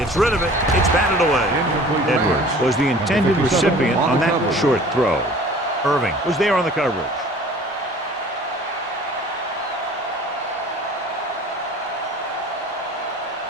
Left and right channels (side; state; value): both; normal; correlation 0.47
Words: rid of it. It's batted away. Edwards was the intended recipient on that short throw. Irving was there on the coverage.